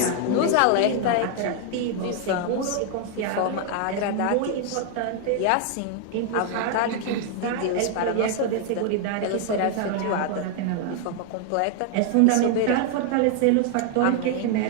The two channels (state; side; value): different; both; correlation 0.00